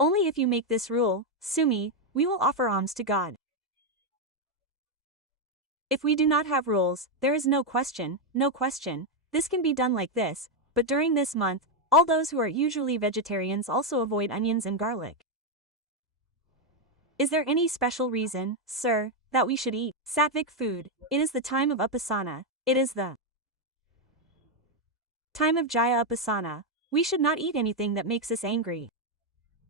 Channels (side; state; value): both; normal; correlation 0.03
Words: if you make this rule, Sumi, we will offer alms to God. If we do not have rules, there is no question, this can be done like this, but during this month, all those who are usually vegetarians also avoid onions and garlic. Is there any special reason, sir, that we should eat sattvic food? It is the time of Upasana. It is the time of Jaya Upasana. We should not eat anything that makes us angry.